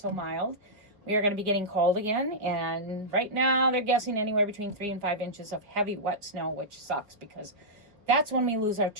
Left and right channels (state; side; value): late; left; 4.8 ms